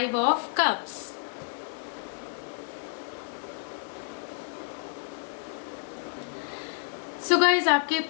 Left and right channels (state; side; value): silent; right; digital silence